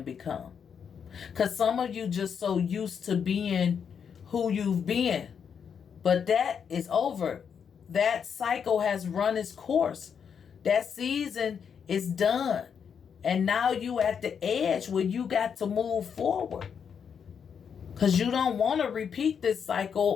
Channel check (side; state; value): right; quieter; 7.1 dB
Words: become. Because some of you just so used to being who you've been. But that is over. That cycle has run its course. That season is done. And now you at the edge where you got to move forward. Because you don't want to repeat this